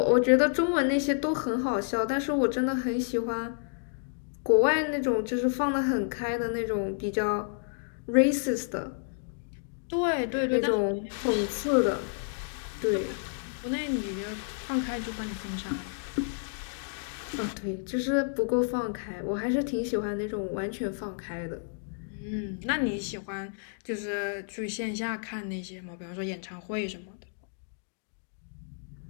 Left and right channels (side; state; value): right; silent; digital silence